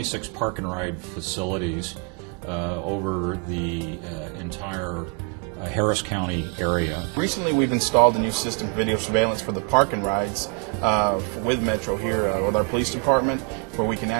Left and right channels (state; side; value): quieter; left; 34.8 dB